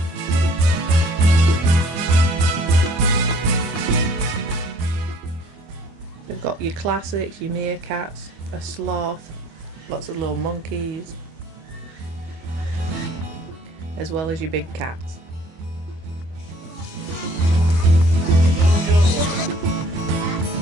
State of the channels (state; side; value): late; left; 25 ms